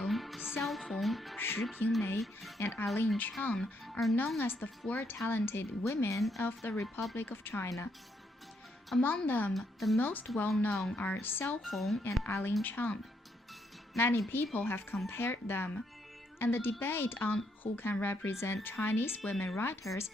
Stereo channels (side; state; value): both; normal; correlation 0.75